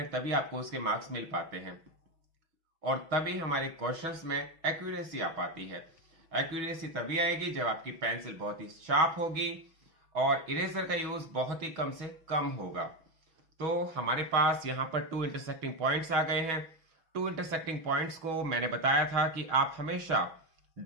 तभी आपको उसके मार्क्स मिल पाते हैं और तभी हमारे क्वेश्चंस में एक्यूरेसी आ पाती है। एक्यूरेसी तभी आएगी जब आपकी पेंसिल बहुत ही शार्प होगी और इरेजर का यूज बहुत ही कम से कम होगा। तो हमारे पास यहाँ पर 2 इंटरसेक्टिंग पॉइंट्स आ गए हैं। 2 इंटरसेक्टिंग पॉइंट्स को मैंने बताया था कि आप हमेशा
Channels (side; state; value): left; late; 6.2 ms